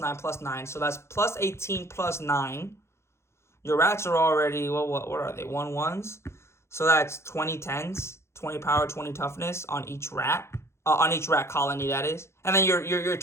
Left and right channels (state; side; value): late; right; 0.13 ms